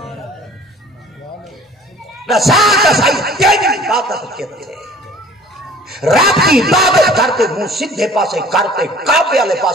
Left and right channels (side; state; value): both; normal; correlation 0.49